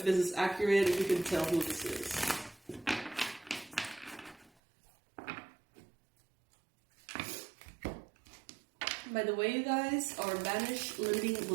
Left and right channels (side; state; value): left; drops out; at 4.5 s